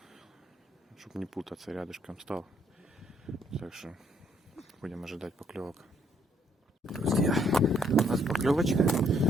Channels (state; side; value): normal; both; correlation 0.68